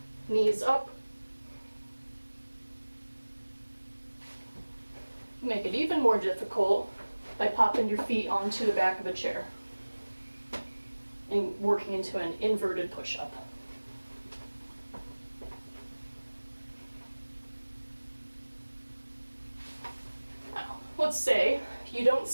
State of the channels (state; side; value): inverted; both; correlation -1.00